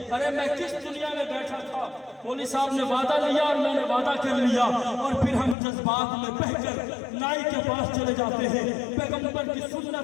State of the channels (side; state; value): right; drops out; at 5.6 s